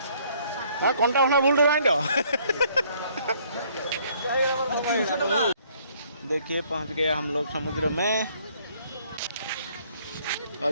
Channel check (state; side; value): inverted; both; correlation -0.63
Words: हाँ कंटा उठा भूल रहा है देखिए पहुंच गए हम लोग समुद्र में